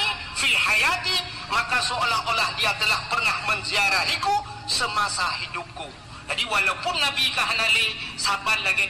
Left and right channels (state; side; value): identical; both; correlation 1.00